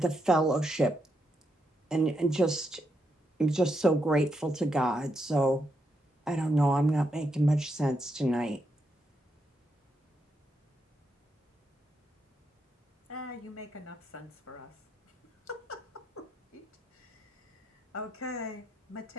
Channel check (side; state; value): both; normal; correlation 0.81